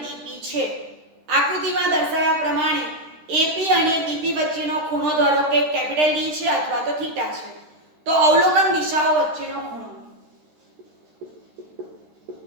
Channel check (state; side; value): late; left; 13 ms